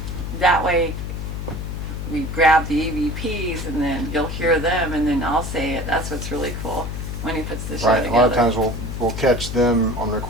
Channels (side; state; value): left; noise; hum, 5 dB below the sound